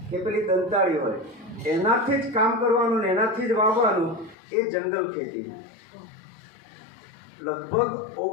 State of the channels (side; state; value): right; drops out; at 4.4 s